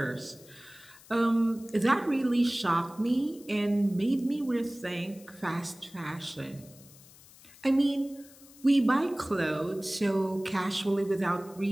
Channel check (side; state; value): left; noise; hiss, 23 dB below the sound